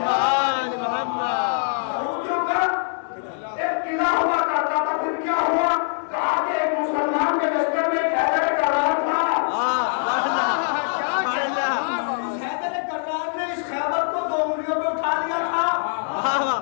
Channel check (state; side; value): silent; right; digital silence